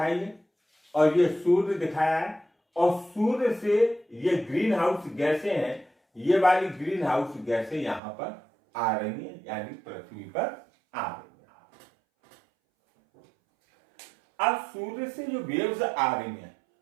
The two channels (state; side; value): drops out; left; at 8.0 s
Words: है और ये सूर्य दिखाया है। और सूर्य से ये ग्रीन हाउस गैसें हैं, ये वाली ग्रीन हाउस गैसें यहां पर आ रही हैं, यानी पृथ्वी पर आ रही हैं। अब सूर्य से जो वेव्स आ रही हैं,